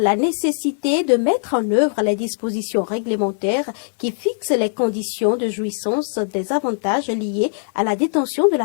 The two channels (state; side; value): silent; right; digital silence